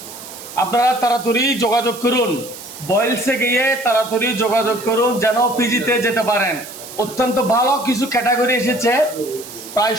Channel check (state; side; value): noise; right; hiss, 14 dB below the sound